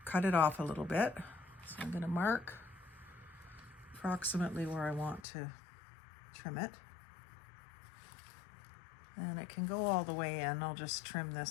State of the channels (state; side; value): drops out; right; at 5.2 s